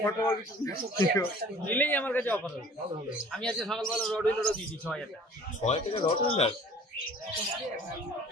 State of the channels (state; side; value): normal; both; correlation 0.49